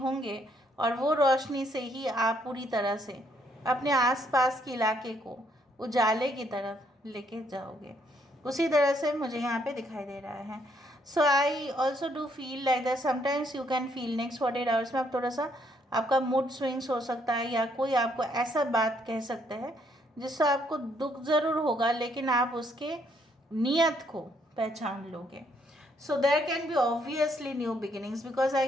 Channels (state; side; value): normal; both; correlation 0.70